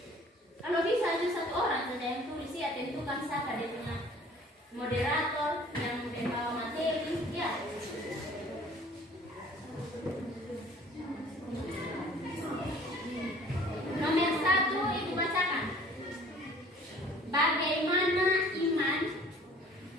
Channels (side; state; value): both; normal; correlation 0.52